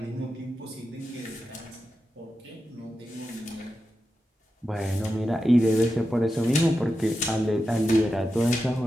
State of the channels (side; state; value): both; normal; correlation 0.90